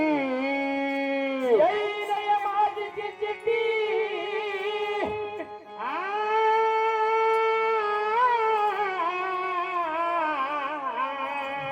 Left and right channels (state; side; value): identical; both; correlation 1.00